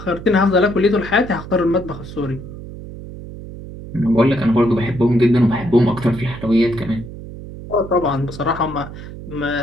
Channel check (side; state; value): right; noise; hum, 12 dB below the sound